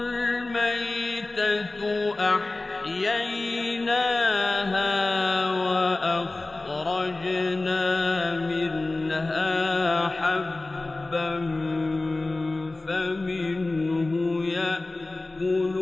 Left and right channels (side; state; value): right; quieter; 3.0 dB